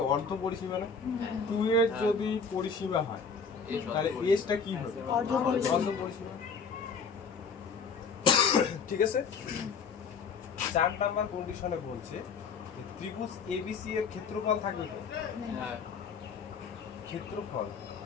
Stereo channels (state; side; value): quieter; right; 5.5 dB